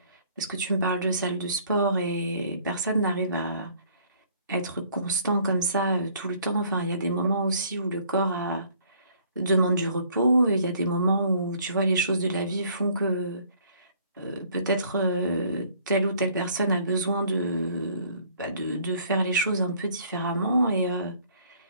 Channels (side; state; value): both; inverted; correlation -0.59